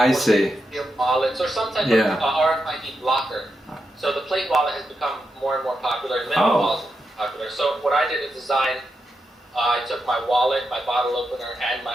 see. Steel wallets or some type of RFID blocker. So the plate wallet has become more and more popular, and minimal wallets are popular. So what I did is design. I took my wallet, my bottle opener, and my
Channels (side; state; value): both; normal; correlation 0.86